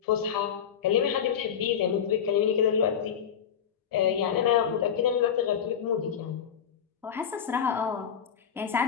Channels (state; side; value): quieter; right; 8.2 dB